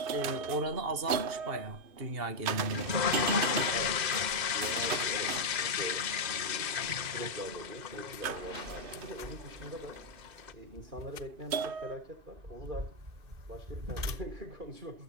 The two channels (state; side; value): late; left; 2.5 ms